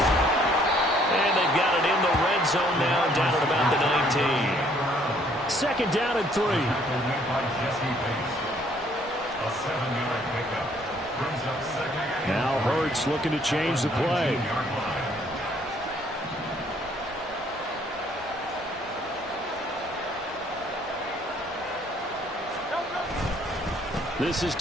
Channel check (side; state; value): both; normal; correlation 0.63